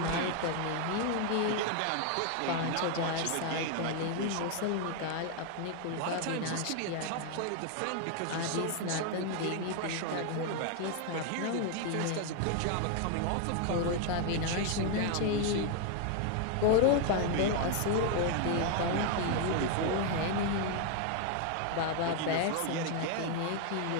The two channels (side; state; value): both; different; correlation 0.00